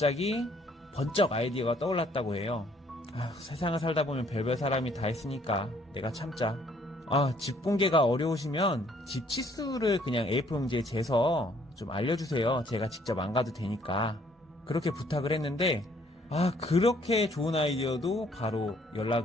번쩍 아이디어가 떠올랐다고 해요. 세상을 살다 보면 별별 사람이 다 있으니까 내가 참자. 집 공개가 어려우시면 집 치수를 그냥 A4 용지에 재서 좀 알려주세요. 제가 직접 안 가도 되니까. 그렇게 부탁을 했는데 그렇게 좋은 아이디어도 바로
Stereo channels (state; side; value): normal; both; correlation 0.63